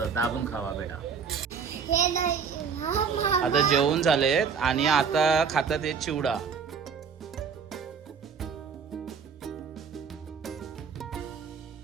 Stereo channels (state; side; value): quieter; left; 6.3 dB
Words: दाबून खावा बेटा. आता जेवण झालेत आणि आता खातात हे चिवडा.